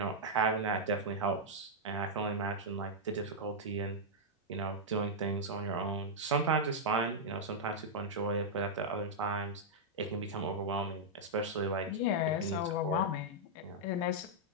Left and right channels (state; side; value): normal; both; correlation -0.06